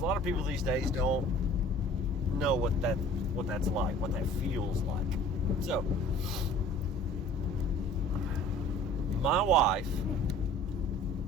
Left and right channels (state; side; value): normal; both; correlation 0.48